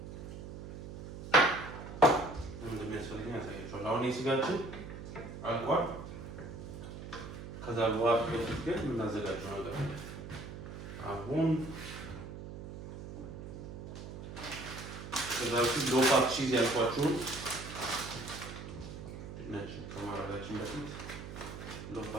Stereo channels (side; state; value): right; noise; hum, 10 dB below the sound